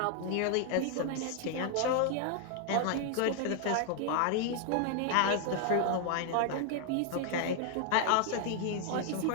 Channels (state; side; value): different; both; correlation 0.00